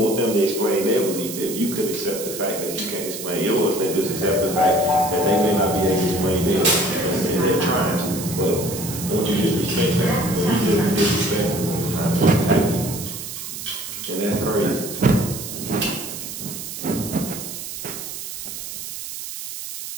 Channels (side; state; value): right; noise; hiss, 8 dB below the sound